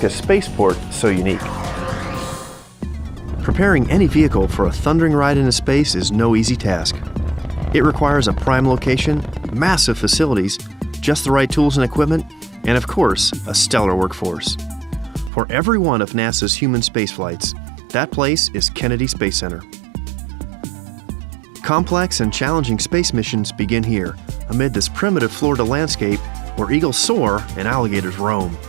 spaceport so unique. Preparing any vehicle for a thundering ride into space is no easy task. It requires a prime location, massive facilities, just the right tools and equipment, and of course, a stellar workforce. For every one of NASA's human space flights, that place is Kennedy Space Center. Complex and challenging space missions begin here, amid this primitive Florida landscape where eagles soar and alligators roam.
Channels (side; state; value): left; drops out; at 15.3 s